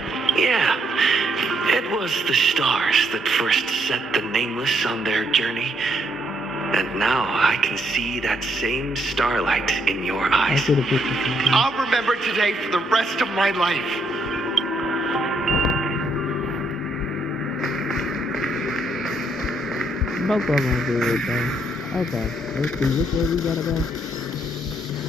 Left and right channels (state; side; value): normal; both; correlation 0.73